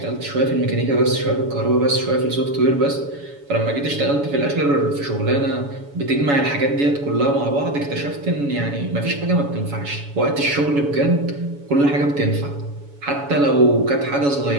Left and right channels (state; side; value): late; left; 7.1 ms